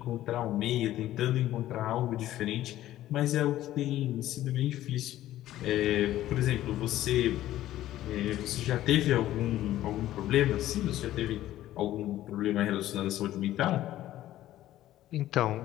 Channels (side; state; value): right; quieter; 13.9 dB